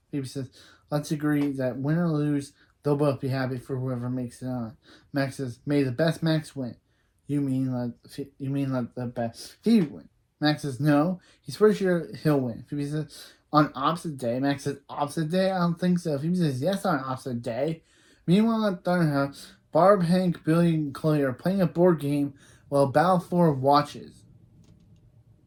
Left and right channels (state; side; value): identical; both; correlation 1.00